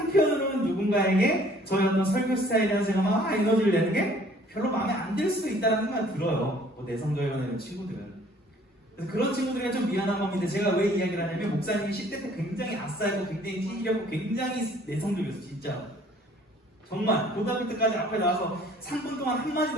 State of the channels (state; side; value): normal; both; correlation 0.56